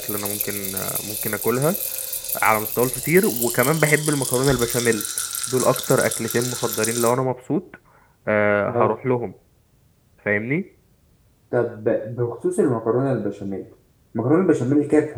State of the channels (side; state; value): both; identical; correlation 1.00